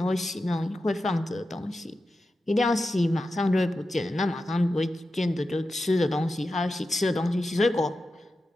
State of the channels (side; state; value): both; normal; correlation 0.91